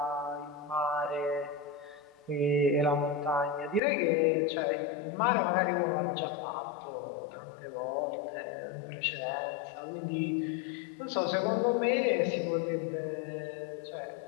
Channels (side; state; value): right; drops out; at 3.8 s